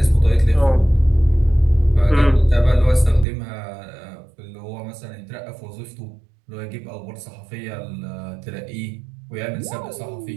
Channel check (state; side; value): drops out; left; at 3.2 s